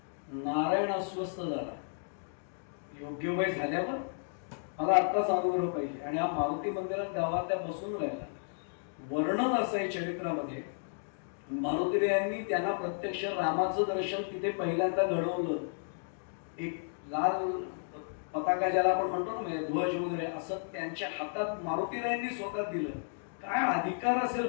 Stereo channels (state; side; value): silent; right; digital silence